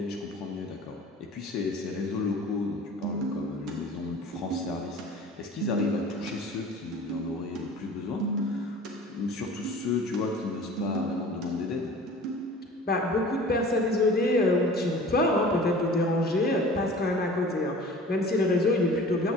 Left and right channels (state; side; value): normal; both; correlation 0.43